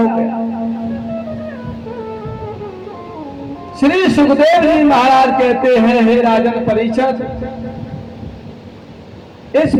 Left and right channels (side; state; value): both; identical; correlation 1.00